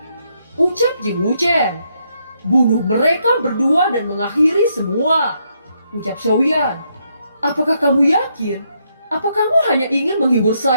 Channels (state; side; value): inverted; both; correlation -0.76